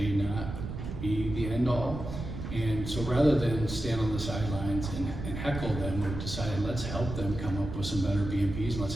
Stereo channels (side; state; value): right; noise; rumble, 7 dB below the sound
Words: not be the end all. And so rather than stand on the sidelines and heckle them, we've decided let's help them come up with some better BMPs and let's